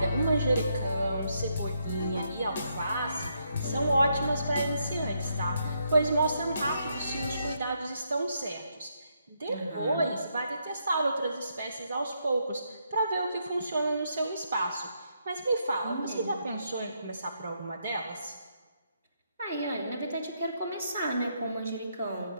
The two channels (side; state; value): both; inverted; correlation -0.77